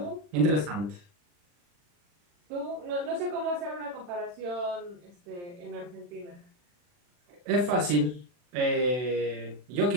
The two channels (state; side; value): late; left; 40 ms